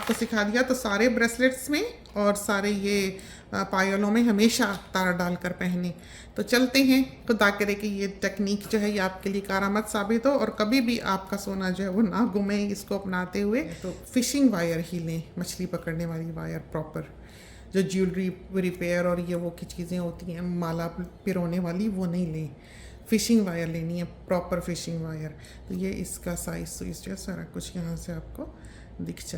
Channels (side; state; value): both; identical; correlation 1.00